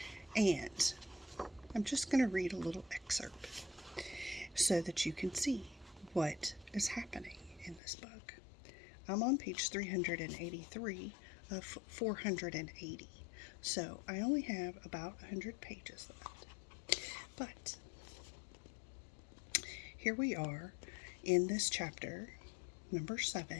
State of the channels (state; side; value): drops out; right; at 7.8 s